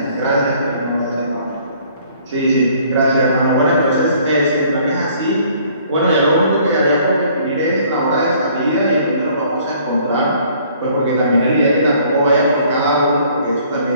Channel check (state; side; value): inverted; both; correlation -0.59